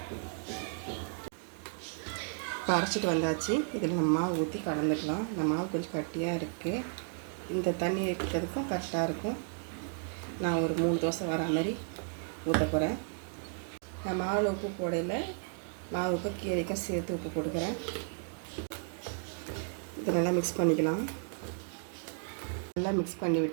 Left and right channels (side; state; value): left; silent; 55 dB below the other